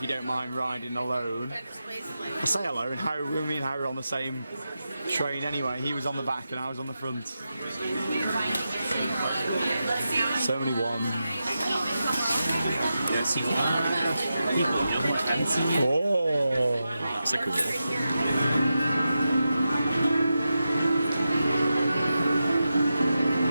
you don't mind riding alone. I say alone, me and Harry were on the same train anyway. He was on the back and I was on the front. So many wands. Oh, That's a cool one.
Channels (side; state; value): both; inverted; correlation -0.90